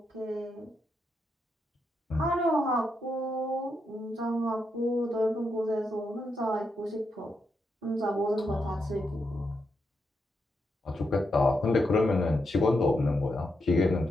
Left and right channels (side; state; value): both; normal; correlation 0.83